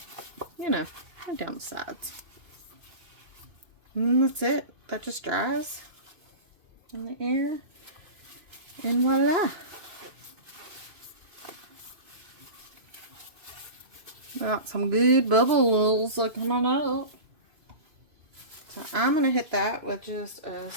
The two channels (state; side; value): late; left; 2.5 ms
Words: you know, went down the sides. And that's it. That just dries in the air, and voila. Got some good bubbles coming up. So I'm going to hit that with just a